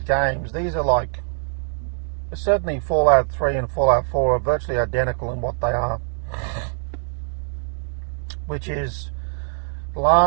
games, these are like, certainly Fallout 3 and Fallout 4 are virtually identical in what they are, which is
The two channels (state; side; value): silent; left; digital silence